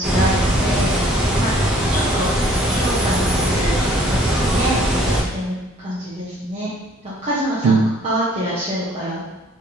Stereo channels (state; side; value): normal; both; correlation 0.58